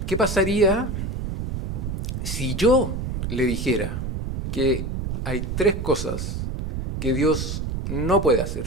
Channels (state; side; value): noise; right; rumble, 4 dB below the sound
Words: ¿Qué pasaría si yo le dijera que hay 3 cosas que Dios no puede